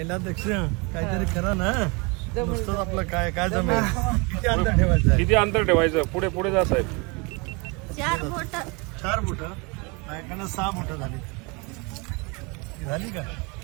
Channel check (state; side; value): quieter; left; 29.3 dB